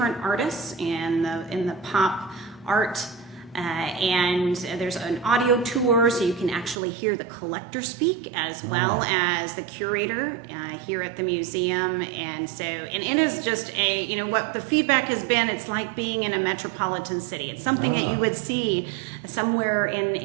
artists in the pop art. And there's an audio tour, so you can actually hear the collector speak as well as the curator here at the museum. And it is just what the feedback has been, it's like being in a metropolitan city. It's something that you would see somewhere in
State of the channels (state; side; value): drops out; left; at 6.8 s